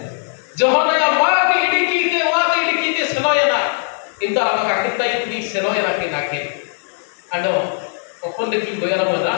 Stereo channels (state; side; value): silent; right; 66 dB below the other